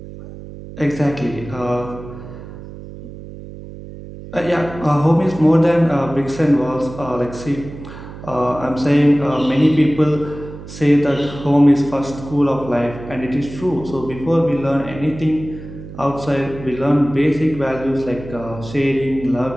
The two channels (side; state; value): right; noise; hum, 14 dB below the sound